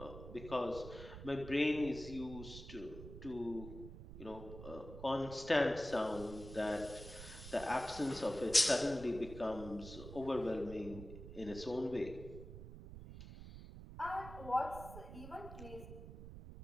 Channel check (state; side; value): noise; right; rumble, 12 dB below the sound